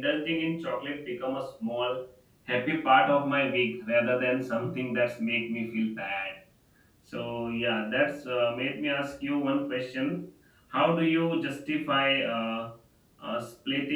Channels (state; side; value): identical; both; correlation 1.00